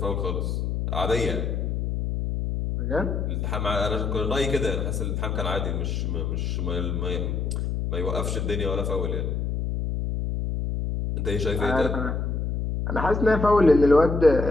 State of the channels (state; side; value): noise; left; hum, 1 dB below the sound